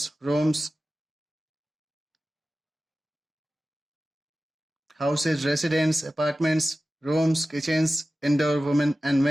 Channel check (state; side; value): normal; both; correlation 0.95